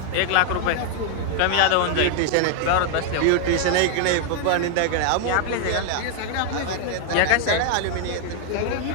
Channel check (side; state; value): both; different; correlation 0.00